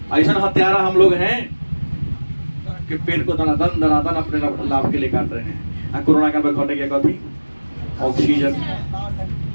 ऐसा हत्यारा हम लोग हैं कि पेड़ को दनादन अपने लाभ के लिए काट रहे हैं। कोरोना काल में घटे क्या कभी ऑक्सीजन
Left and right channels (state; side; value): inverted; both; correlation -1.00